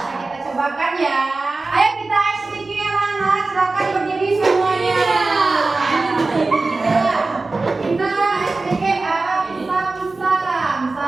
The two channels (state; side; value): quieter; left; 3.5 dB